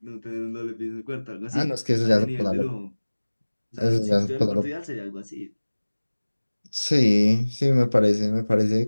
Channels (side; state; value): both; inverted; correlation -1.00